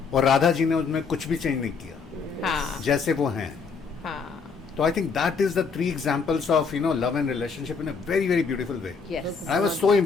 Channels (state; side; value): quieter; right; 5.3 dB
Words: और राधा जी ने उनमें कुछ भी चेंज नहीं किया, हाँ जैसे वो हैं। हाँ तो I think that is the 3 examples of love and relationship in a very very beautiful way. Yes I was so